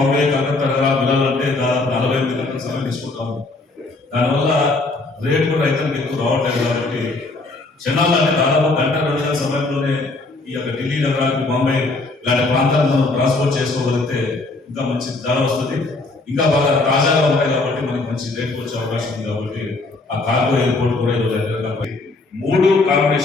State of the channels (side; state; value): right; quieter; 3.3 dB